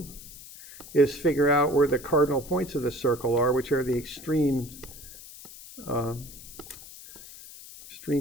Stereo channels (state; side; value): noise; left; hiss, 16 dB below the sound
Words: is figure out where the cardinal points of the circle are, which are the extreme